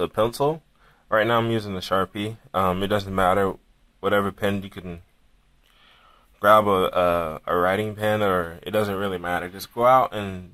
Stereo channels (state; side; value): identical; both; correlation 1.00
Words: a pencil. Right now I'm using the Sharpie. It doesn't matter, whatever pen you can grab a writing pen, or it doesn't really matter. Just go out and